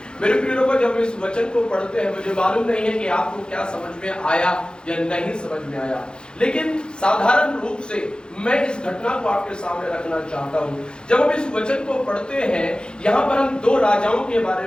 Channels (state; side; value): late; right; 0.049 ms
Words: मेरे प्रिय लोगों, जब इस वचन को पढ़ते हैं मुझे मालूम नहीं है कि आपको क्या समझ में आया या नहीं समझ में आया, लेकिन साधारण रूप से मैं इस घटना को आपके सामने रखना चाहता हूँ। जब हम इस वचन को पढ़ते हैं, यहाँ पर हम दो राजाओं के बारे